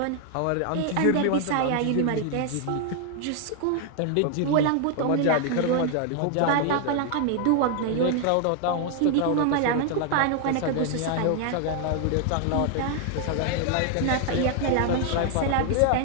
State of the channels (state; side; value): different; both; correlation 0.00